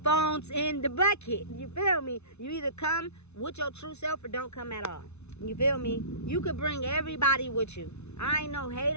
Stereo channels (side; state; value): right; late; 0.81 ms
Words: Phones in the bucket. You feel me? You either come with your true self or don't come at all. You feel me? You could bring everybody with you. I ain't no